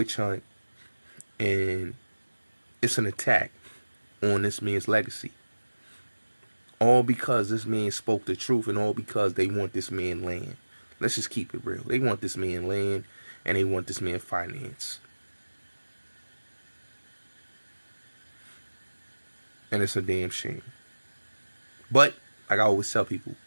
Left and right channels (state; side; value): inverted; both; correlation -1.00